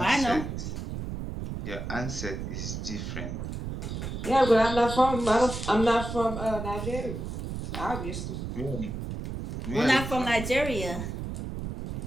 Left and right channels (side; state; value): right; noise; rumble, 6 dB below the sound